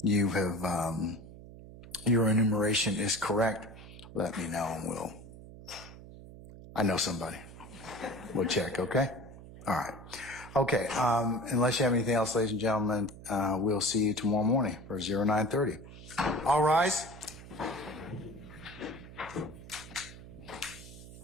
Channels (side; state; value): right; noise; hum, 16 dB below the sound